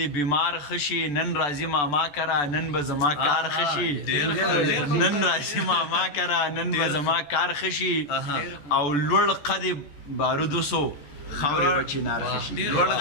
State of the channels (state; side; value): late; right; 14 ms